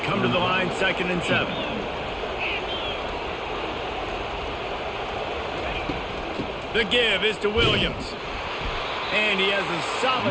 come to the line 2nd and 7. The give is to Williams. And he has a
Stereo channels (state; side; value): identical; both; correlation 1.00